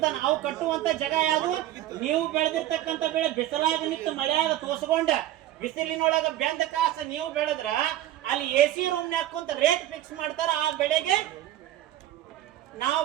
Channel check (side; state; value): left; quieter; 13.6 dB